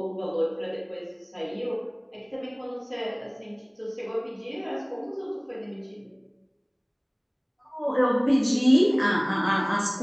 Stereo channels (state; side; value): identical; both; correlation 1.00